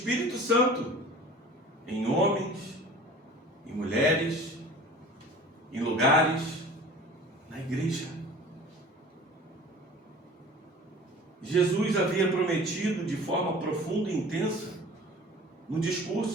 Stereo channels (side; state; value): both; normal; correlation 0.43